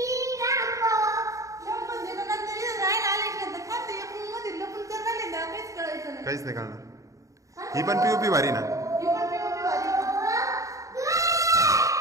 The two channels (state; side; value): late; left; 0.16 ms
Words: काहीच नाही कळणार ही पण पीओपी भारी ना